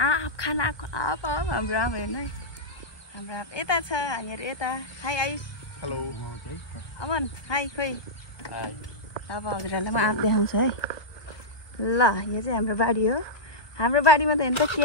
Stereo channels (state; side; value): late; right; 1.2 ms